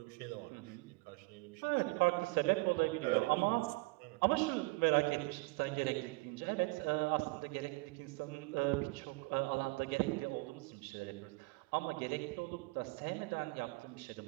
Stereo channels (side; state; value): left; quieter; 25.9 dB